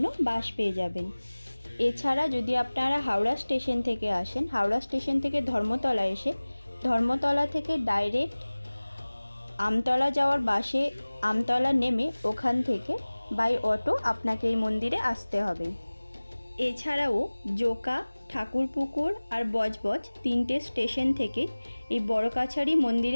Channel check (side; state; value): both; inverted; correlation -1.00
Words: বাস পেয়ে যাবেন। এছাড়া যদি আপনারা হাওড়া স্টেশন থেকে আসেন, হাওড়া স্টেশন থেকে ধর্মতলা এসে ধর্মতলা থেকে ডাইরেক্ট আমতলা যাওয়ার বাসে আমতলা নেমে ওখান থেকে বাই অটো আপনাকে এই মন্দিরে আসতে হবে। এছাড়াও জোকা, ঠাকুরপুকুর আর বজবজ তিনটে স্টেশন থেকে এই বড় কাছারি